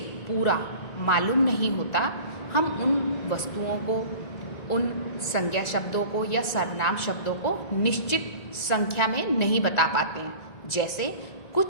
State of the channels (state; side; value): late; right; 1.9 ms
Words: पूरा मालूम नहीं होता, हम उन वस्तुओं को, उन संज्ञा शब्दों को या सर्वनाम शब्दों को निश्चित संख्या में नहीं बता पाते हैं। जैसे